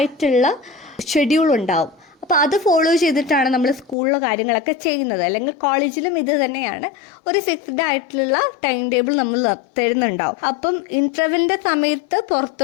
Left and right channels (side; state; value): right; drops out; at 4.0 s